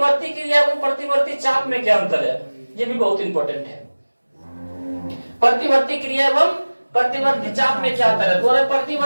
क्रिया एवं प्रतिवर्ती चाप में क्या अंतर है? ये भी बहुत इंपॉर्टेंट है। प्रतिवर्ती क्रिया एवं प्रतिवर्ती चाप में क्या अंतर है? तो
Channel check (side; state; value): both; inverted; correlation -1.00